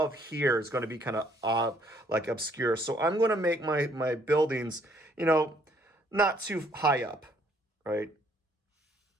here is going to be kind of like obscure. So I'm going to make my buildings, you know, not too high up, right?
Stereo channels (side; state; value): both; normal; correlation 0.65